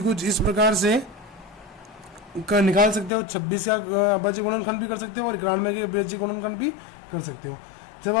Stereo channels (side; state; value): right; drops out; at 3.1 s